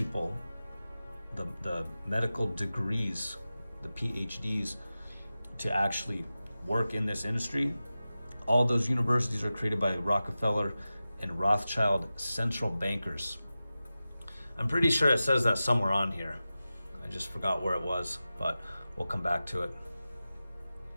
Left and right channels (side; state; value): both; inverted; correlation -0.94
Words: the medical degrees, the PhDs, to actually work in this industry. All those universities are created by Rockefeller and Rothschild central bankers. I'm pretty sure it says that somewhere on here. I just forgot where it was, but we'll come back to it.